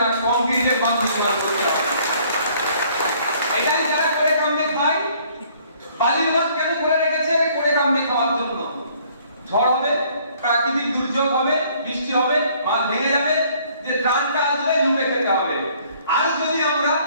না, কংক্রিটের বাঁধ নির্মাণ করতে হবে। এটাই যারা করে কামড়ে খায়। বালির বাঁধ কেন করে রেখেছে? করে কামড়ে খাওয়ার জন্য। ঝড় হবে, প্রাকৃতিক দুর্যোগ হবে, বৃষ্টি হবে, বাঁধ ভেঙে যাবে, যে ত্রাণটা আসবে লুটে খেতে হবে। আর যদি আমরা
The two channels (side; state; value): both; inverted; correlation -0.60